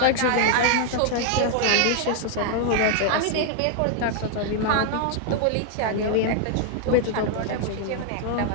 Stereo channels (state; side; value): different; both; correlation 0.00